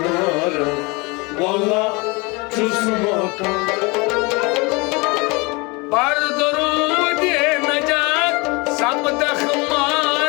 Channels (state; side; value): quieter; right; 26.9 dB